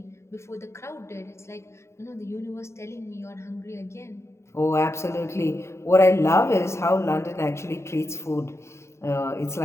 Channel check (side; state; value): right; late; 0.13 ms